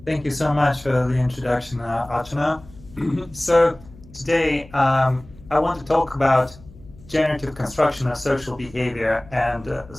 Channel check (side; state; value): left; noise; hum, 22 dB below the sound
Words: Thank you so much for the introduction, Archana. So today I want to talk about generative construction of social behavior and